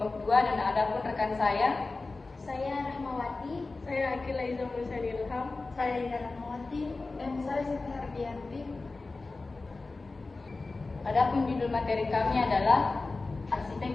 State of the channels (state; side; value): quieter; right; 3.6 dB